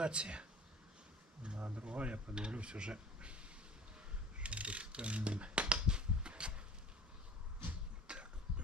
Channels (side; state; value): both; normal; correlation 0.43